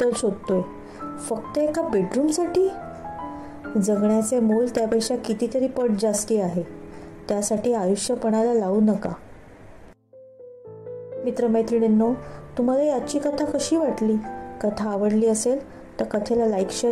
शोधतोय. फक्त एका बेडरूमसाठी? जगण्याचे मोल त्यापेक्षा कितीतरी पट जास्ती आहे. त्यासाठी आयुष्यपणाला लावू नका. मित्रमैत्रिणींनो, तुम्हाला याची कथा कशी वाटली? कथा आवडली असेल तर कथेला लाईक,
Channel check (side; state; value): both; identical; correlation 1.00